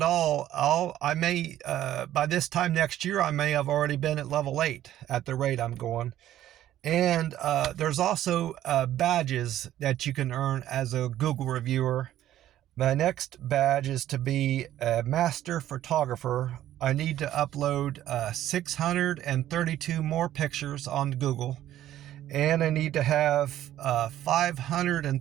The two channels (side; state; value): left; quieter; 12.7 dB